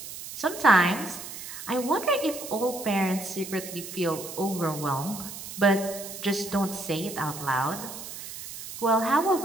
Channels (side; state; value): right; noise; hiss, 11 dB below the sound